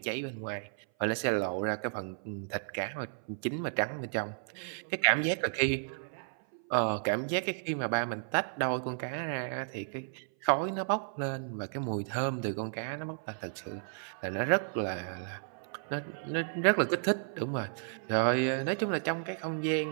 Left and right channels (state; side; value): silent; left; 56 dB below the other